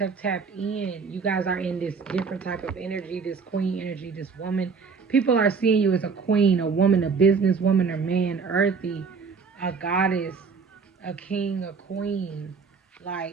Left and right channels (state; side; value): quieter; left; 5.3 dB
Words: tapped in. You guys are in this different type of energy, this queen energy, this woman. People are seeing you as a queen, a woman, a businesswoman, a man, earthy, a goddess, a king, a queen.